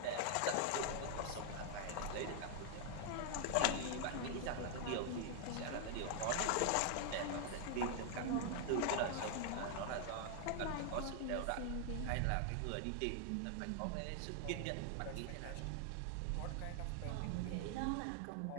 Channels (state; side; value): different; both; correlation 0.00